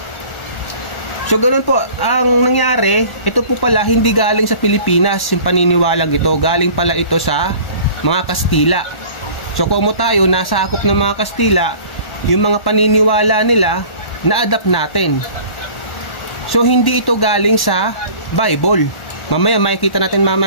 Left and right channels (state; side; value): late; right; 1.1 ms